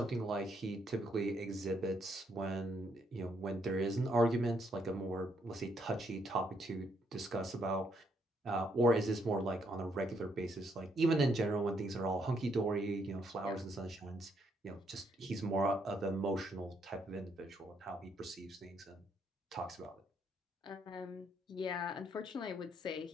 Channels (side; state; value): both; normal; correlation 0.73